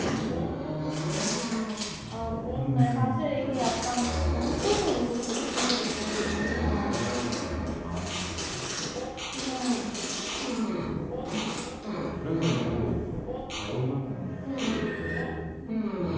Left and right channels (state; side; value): identical; both; correlation 1.00